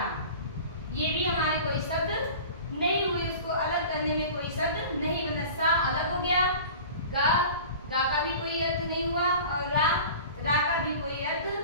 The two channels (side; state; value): both; inverted; correlation -0.39